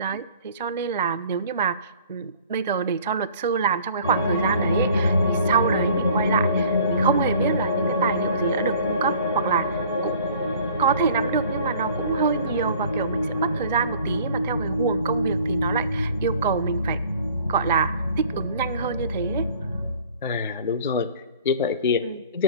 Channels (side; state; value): both; inverted; correlation -0.51